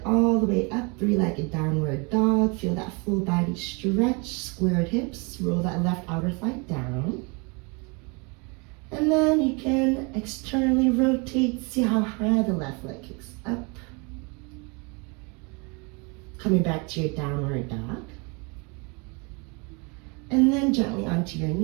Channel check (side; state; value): left; quieter; 30.9 dB